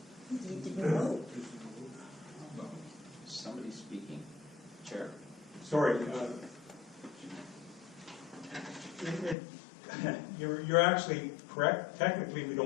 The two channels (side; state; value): right; drops out; at 9.3 s